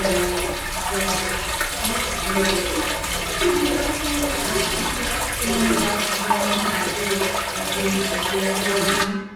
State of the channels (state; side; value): identical; both; correlation 1.00